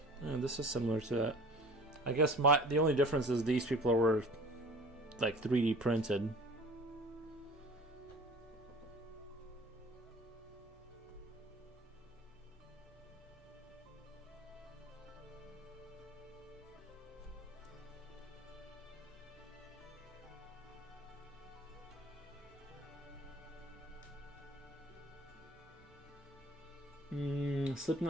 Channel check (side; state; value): both; normal; correlation 0.44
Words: This is similar to that. I guess the only difference is these people were like 3D printed.